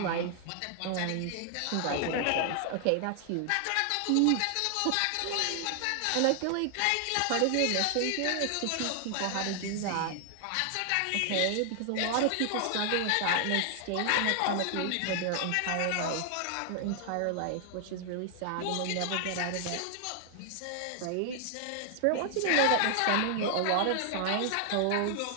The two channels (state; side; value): different; both; correlation 0.00